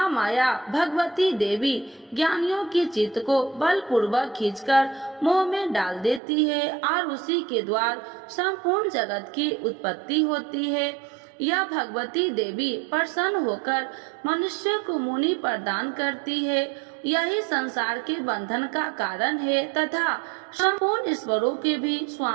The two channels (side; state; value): left; drops out; at 6.2 s